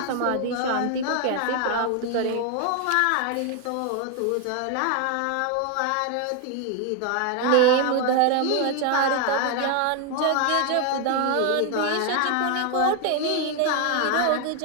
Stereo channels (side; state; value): both; different; correlation 0.01